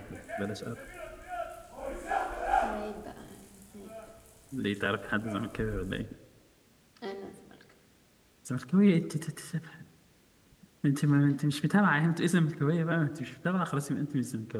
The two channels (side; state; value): both; identical; correlation 1.00